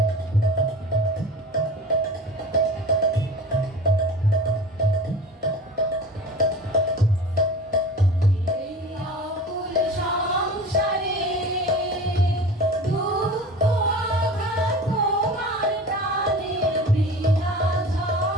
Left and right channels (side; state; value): both; normal; correlation 0.37